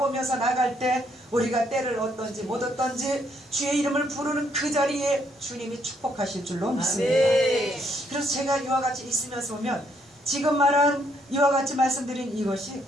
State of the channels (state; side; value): normal; both; correlation 0.71